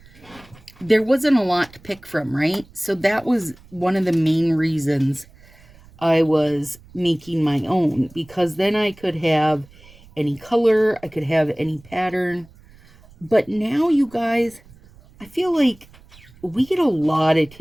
there wasn't a lot to pick from, right? So that was one of the main reasons I was making my own, because then I could have any color, I could have any pattern. But now, you guys, I feel like we get a lot of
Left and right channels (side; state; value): right; noise; rumble, 25 dB below the sound